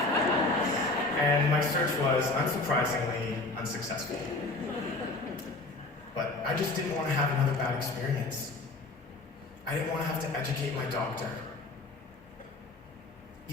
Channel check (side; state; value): right; quieter; 3.1 dB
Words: And my search was, unsurprisingly, unsuccessful. But I just didn't want to have another bad experience. I didn't want to have to educate my doctor.